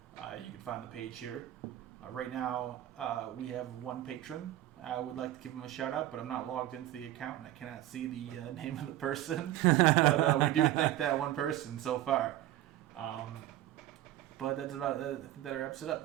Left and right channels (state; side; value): quieter; left; 14.1 dB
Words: You can find the page here. Right now, we have one patron. I would like to give him a shout out, but I'm not logged into the account and I cannot see the name of the person. But we do thank that one person so far. But that's about it. I think that wraps it